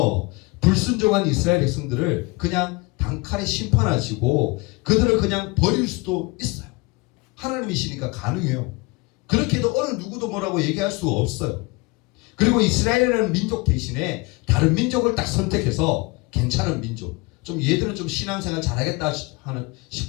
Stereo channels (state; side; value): quieter; right; 25.9 dB